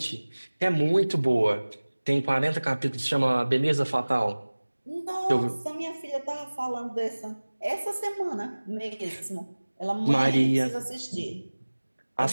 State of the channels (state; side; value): inverted; both; correlation -1.00